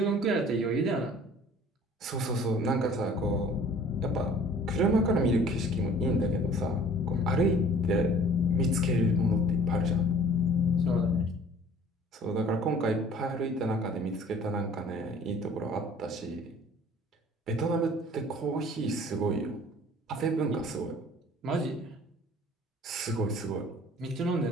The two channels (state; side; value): normal; both; correlation 0.50